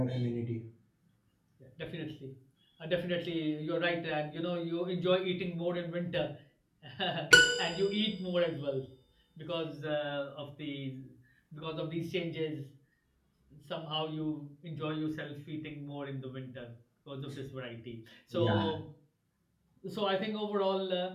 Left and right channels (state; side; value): identical; both; correlation 1.00